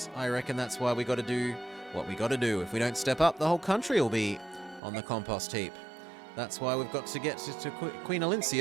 I reckon that's why we gotta do what we gotta do. If we don't step up, the whole country will be on the compost heap. That's why we've got to get to Queen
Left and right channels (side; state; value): left; drops out; at 4.8 s